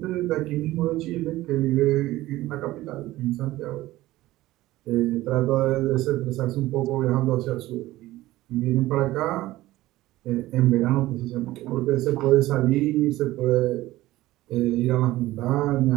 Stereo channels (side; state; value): left; quieter; 16.9 dB